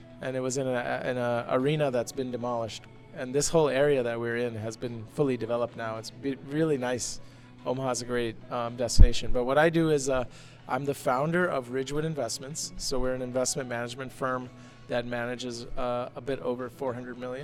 And it was in a arena that's been demolished. And this whole area that we're in has been fully developed now. It's really nice. Omaha's a great destination. But what I do is I'm the founder of Ridgewood Investments. So we're an investment management firm that manages a bit over $400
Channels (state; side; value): identical; both; correlation 1.00